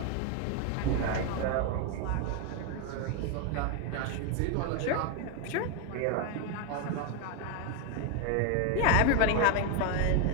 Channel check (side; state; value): both; different; correlation 0.01